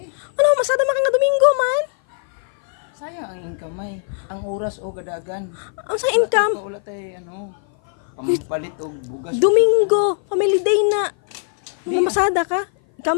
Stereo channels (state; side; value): silent; right; 56 dB below the other